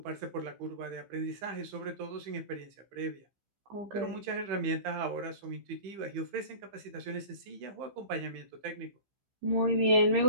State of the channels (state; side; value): late; left; 15 ms